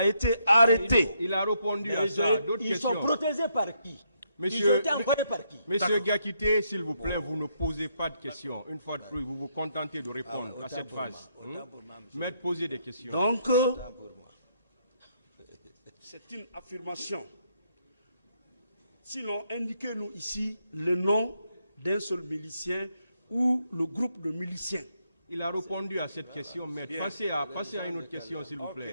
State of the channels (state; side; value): inverted; both; correlation -0.75